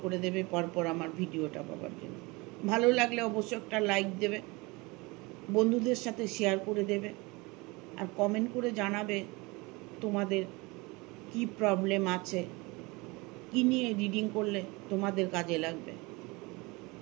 করে দেবে পরপর আমার ভিডিওটা পাওয়ার জন্য। ভালো লাগলে অবশ্যই একটা লাইক দেবে, বন্ধুদের সাথে শেয়ার করে দেবে, আর কমেন্ট করে জানাবে তোমাদের কি প্রবলেম আছে, কি নিয়ে রিডিং করলে তোমাদের কাজে লাগবে।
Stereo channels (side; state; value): left; quieter; 25.0 dB